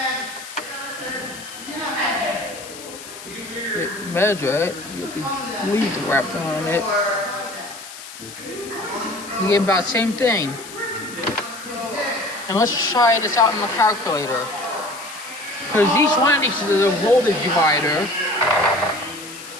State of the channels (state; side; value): noise; left; hiss, 14 dB below the sound